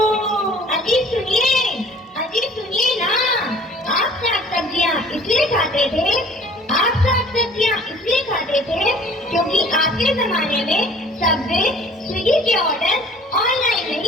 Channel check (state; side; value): normal; both; correlation 0.50